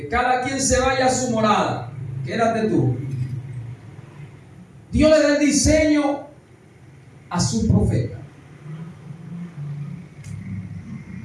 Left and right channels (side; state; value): both; identical; correlation 1.00